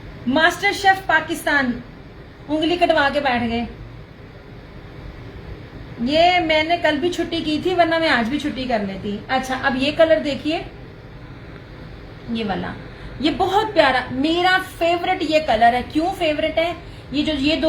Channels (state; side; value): identical; both; correlation 1.00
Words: मास्टर शेफ पाकिस्तान उंगली कटवा के बैठ गए। ये मैंने कल भी छुट्टी की थी, वरना मैं आज भी छुट्टी कर लेती। अच्छा, अब ये कलर देखिए, ये वाला, ये बहुत प्यारा, मेरा फेवरेट ये कलर है। क्यों फेवरेट है?